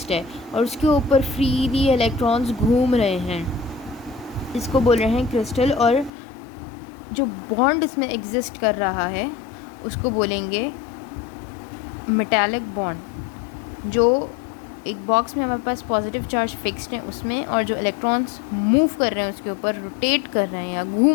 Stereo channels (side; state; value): right; drops out; at 6.1 s